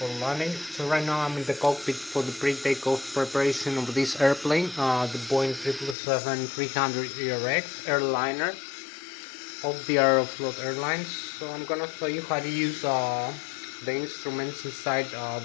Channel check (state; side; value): drops out; right; at 6.0 s